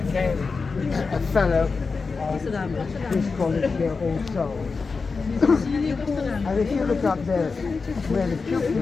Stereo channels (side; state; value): right; quieter; 4.6 dB